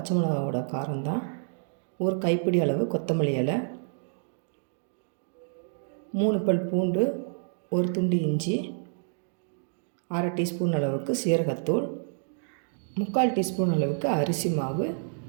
மிளகாவோட காரம்தான். ஒரு கைப்பிடி அளவு கொத்தமல்லி இலை, 3 பல் பூண்டு, ஒரு துண்டு இஞ்சி, 1/2 டீஸ்பூன் அளவுக்கு சீரகத்தூள், 3/4 டீஸ்பூன் அளவுக்கு அரிசி மாவு,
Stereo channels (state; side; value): silent; left; digital silence